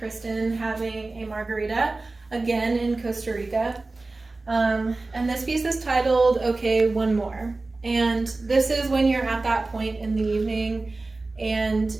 having a margarita, again in Costa Rica. And this piece is titled, Okay, One More. And this is when you're at that point in the evening and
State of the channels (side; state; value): left; quieter; 3.3 dB